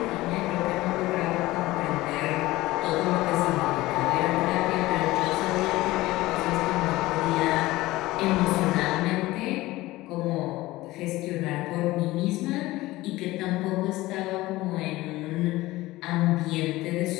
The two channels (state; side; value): quieter; right; 18.4 dB